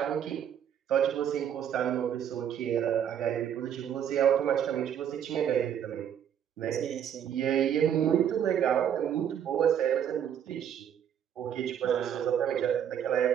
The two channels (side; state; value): left; quieter; 9.2 dB